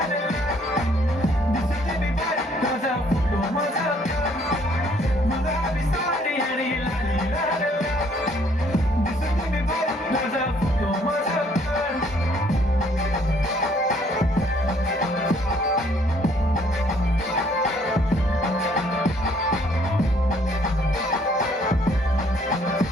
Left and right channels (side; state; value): both; normal; correlation 0.63